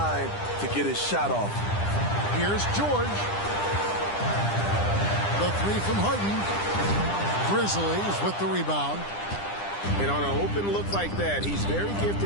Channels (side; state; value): right; late; 9.9 ms